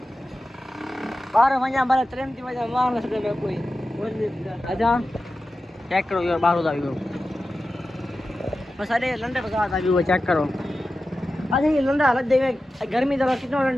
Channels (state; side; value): normal; both; correlation 0.93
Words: 12 वजह बारे ट्रेन की वजह मार न सके कोई अच्छा चेक करो यार 12 का व्यू बस अरे लंडे बाजार का व्यू चेक करो अच्छा ये लंडा हालत देवे गर्मी जरा कितना